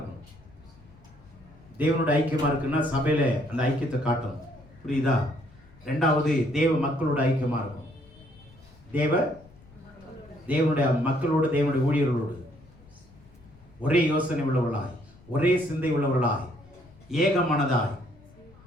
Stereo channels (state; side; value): noise; left; rumble, 25 dB below the sound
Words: தேவனோட ஐக்கியமா இருக்குன்னா சபையில அந்த ஐக்கியத்தை காட்டணும். புரியுதா? 2வது தேவ மக்களோட ஐக்கியமா இருக்கும். தேவனுடைய மக்களோடு, தேவனுடைய ஊழியர்களோடு ஒரே யோசனை உள்ளவர்களாய், ஒரே சிந்தை உள்ளவர்களாய், ஏக மனதாய்,